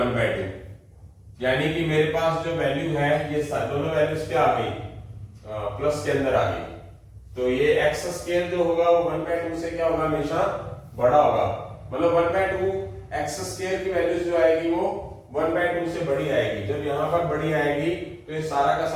यानी कि मेरे पास जो वैल्यू है ये दोनों वैल्यूज क्या आ गई, प्लस के अंदर आ गई। तो ये x स्क्वायर जो होगा वो 1/2 से क्या होगा, हमेशा बड़ा होगा, मतलब 1/2 x स्क्वायर की वैल्यूज जो आएगी वो 1/2 से बड़ी आएगी। जब यहाँ पर बड़ी आएगी तो ये सारा का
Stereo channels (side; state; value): both; identical; correlation 1.00